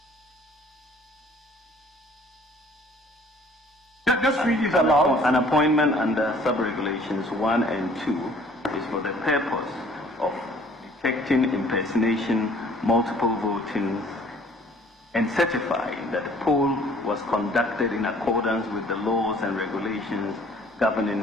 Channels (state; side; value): normal; both; correlation 0.56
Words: Just read it aloud. An appointment under sub-regulations 1 and 2 is for the purpose of detecting impersonation, multiple voting, and certifying that the poll was conducted in accordance with the laws and regulations